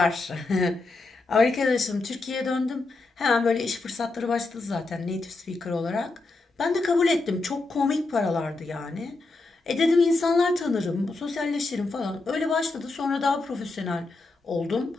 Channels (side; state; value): right; quieter; 3.4 dB